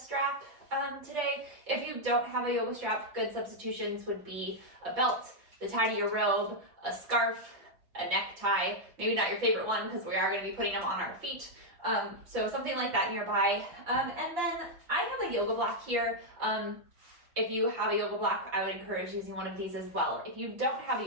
today. If you don't have a yoga strap, good substitutions would be a belt, the tie to your robe, a scarf, a necktie, maybe not your favorite one because we are going to be putting them on our feet. So something like that nearby. And then I have a yoga block here. If you have a yoga block, I would encourage using one of these as well. If you don't have a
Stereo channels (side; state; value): left; late; 5.9 ms